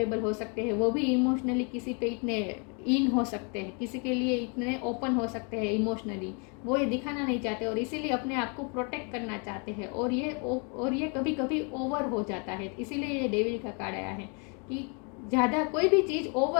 हो सकते हैं, वो भी इमोशनली किसी पे इतने इन हो सकते हैं, किसी के लिए इतने ओपन हो सकते हैं इमोशनली, वो ये दिखाना नहीं चाहते और इसीलिए अपने आप को प्रोटेक्ट करना चाहते हैं। और ये कभी कभी ओवर हो जाता है, इसीलिए ये डेविल का कार्ड आया है कि ज़्यादा कोई भी चीज़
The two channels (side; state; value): right; quieter; 35.9 dB